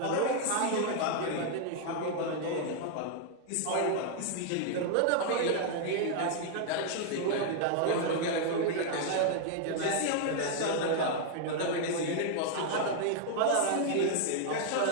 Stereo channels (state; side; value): different; both; correlation 0.00